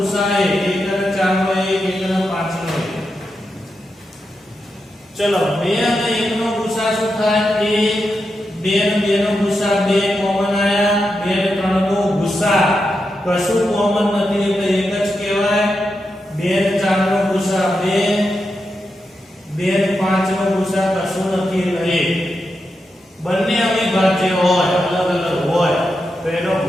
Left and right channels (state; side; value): normal; both; correlation 0.87